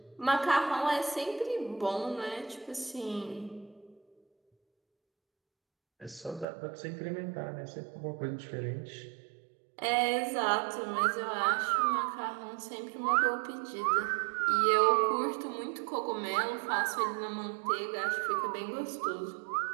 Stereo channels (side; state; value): left; drops out; at 6.5 s